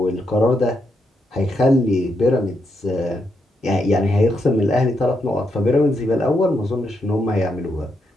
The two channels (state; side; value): normal; both; correlation 0.80